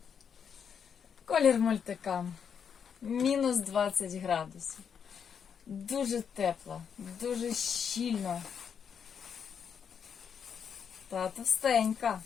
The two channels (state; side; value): quieter; right; 7.3 dB